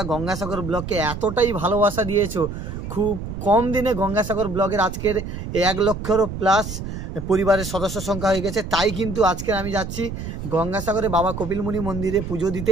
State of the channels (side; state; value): right; noise; rumble, 7 dB below the sound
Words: গঙ্গাসাগর ব্লগকে এতটাই ভালোবাসা দিয়েছো। খুব কম দিনে গঙ্গাসাগর ব্লগের আজকের 1 লক্ষেরও প্লাস পরিবারের সদস্য সংখ্যা হয়ে গেছে। তাই কিন্তু আজকে আমি যাচ্ছি গঙ্গাসাগরে বাবা কপিলমুনি মন্দিরে পুজো দিতে।